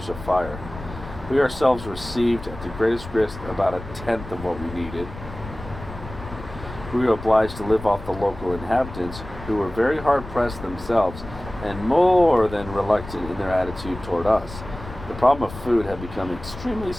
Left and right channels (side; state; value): left; noise; rumble, 13 dB below the sound